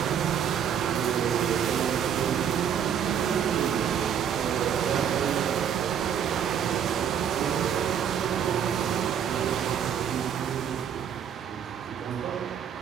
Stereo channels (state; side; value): quieter; left; 8.5 dB